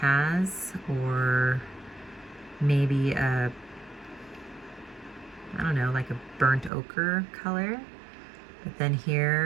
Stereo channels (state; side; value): drops out; left; at 6.7 s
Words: or maybe a, I don't know, like a burnt ochre color. But then